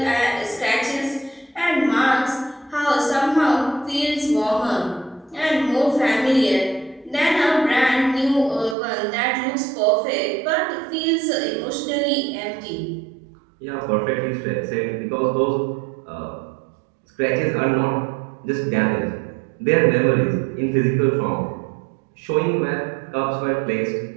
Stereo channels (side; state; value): left; drops out; at 8.8 s